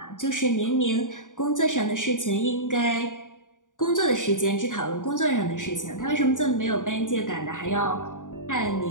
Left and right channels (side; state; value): right; late; 0.87 ms